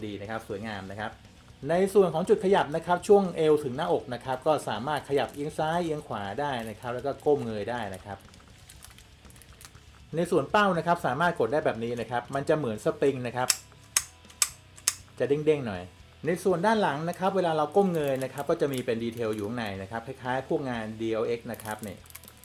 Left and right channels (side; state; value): both; identical; correlation 1.00